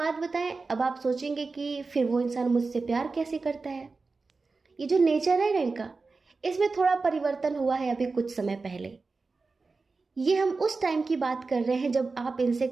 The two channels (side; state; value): left; quieter; 4.0 dB